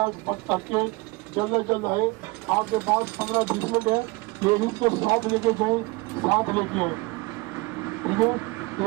تک کے جلد از جلد آئے، آپ کے پاس 15-20 منٹ ہے، لیڈیز کو ساتھ لے کے جائیں، ساتھ لے کے آئیں، ٹھیک ہے،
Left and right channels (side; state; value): left; quieter; 23.7 dB